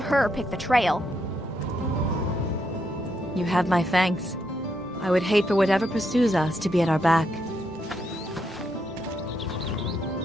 her pick the trail. You have my thanks. I would hate for whatever pursues us to be at our back.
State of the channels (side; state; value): both; normal; correlation 0.79